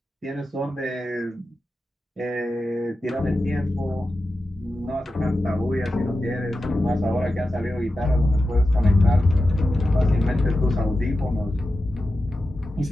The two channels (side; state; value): both; normal; correlation 0.92